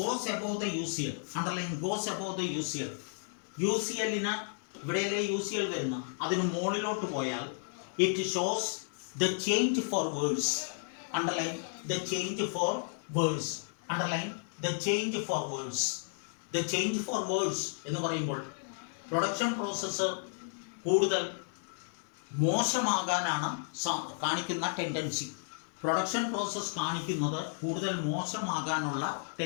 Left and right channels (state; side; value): silent; right; 56 dB below the other